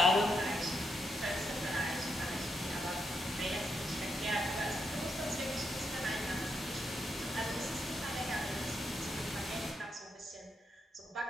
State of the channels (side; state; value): both; normal; correlation 0.81